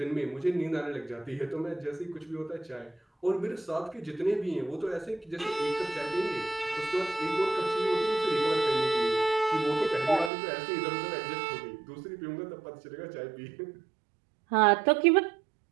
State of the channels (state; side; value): drops out; left; at 10.3 s